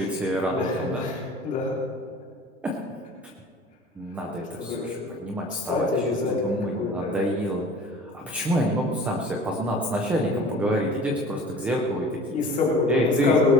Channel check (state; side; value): normal; both; correlation 0.44